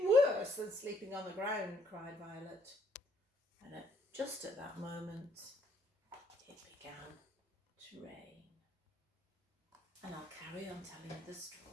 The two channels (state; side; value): normal; both; correlation 0.69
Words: worse than sleeping on the ground, cried Violet. And just at that moment, it began to rain. And I'll carry on telling you the